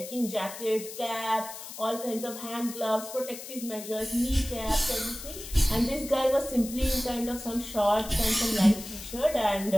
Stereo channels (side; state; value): left; noise; hiss, 11 dB below the sound